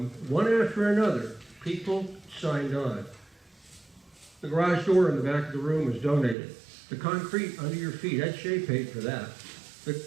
after another, people signed on. The garage door in the back of the room was donated. The concrete under your feet, Ed Shea paid for that.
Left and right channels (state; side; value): drops out; left; at 6.4 s